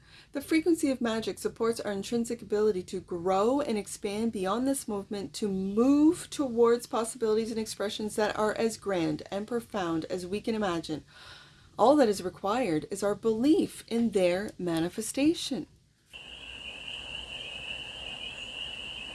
The frequency of magic supports our intrinsic ability to grow and expand beyond this movement, to move towards possibilities and expressions that are as grand and profound as we can imagine. All that is required is our belief in their manifestation.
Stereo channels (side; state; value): both; identical; correlation 1.00